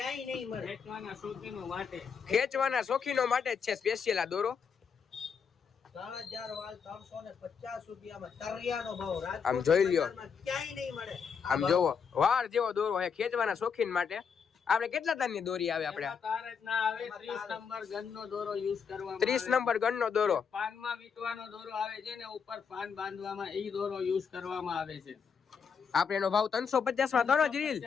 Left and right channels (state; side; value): quieter; right; 6.4 dB